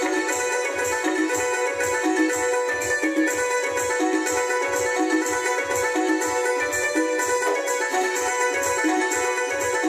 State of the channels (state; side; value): identical; both; correlation 1.00